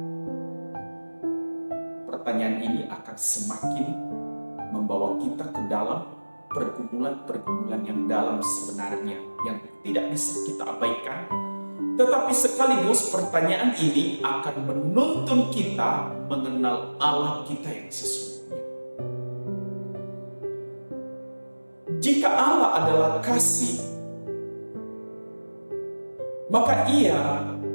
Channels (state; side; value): inverted; both; correlation -1.00